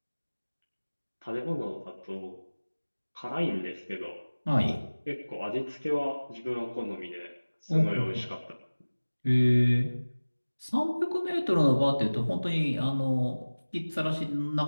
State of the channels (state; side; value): inverted; both; correlation -1.00